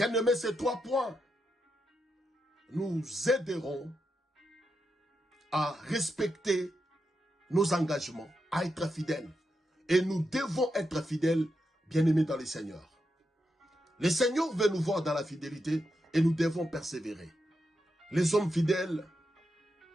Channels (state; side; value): normal; both; correlation 0.85